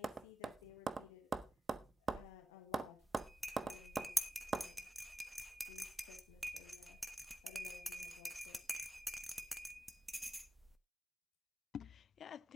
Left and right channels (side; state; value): both; normal; correlation 0.92